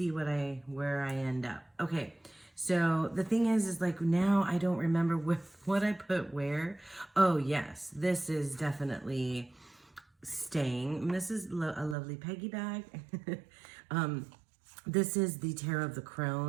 where I end up. Okay, so the thing is like now I don't remember what I put where. Oh yes, this is definitely staying. And this is a lovely Peggy bag. This is the Tarot of the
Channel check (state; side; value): drops out; left; at 12.0 s